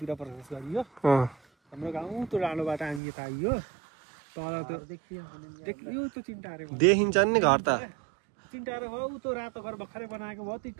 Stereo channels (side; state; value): left; drops out; at 3.0 s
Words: प्रवेश गरियो हाम्रो गाउँ त्यो राणोबाट हामी यता आइयो तल त्यो देखियो त्यो चिन्टारे देखिन्छ नि घर त चिन्टारे हो उ त्यो रातो घर भर्खरै बनाएको भयो त्यो